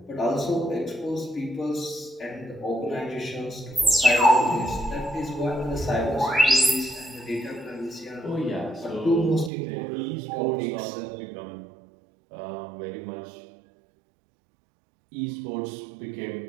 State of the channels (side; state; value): left; drops out; at 9.5 s